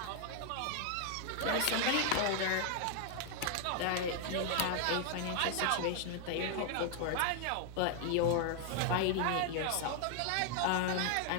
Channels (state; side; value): different; both; correlation 0.00